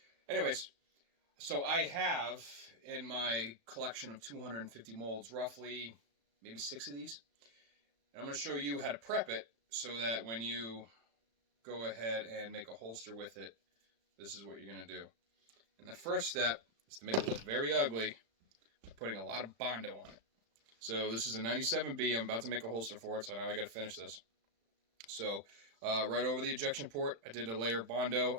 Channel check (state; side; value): late; left; 35 ms